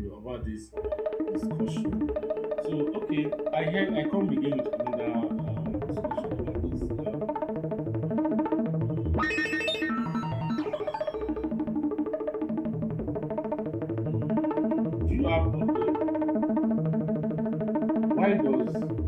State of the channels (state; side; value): identical; both; correlation 1.00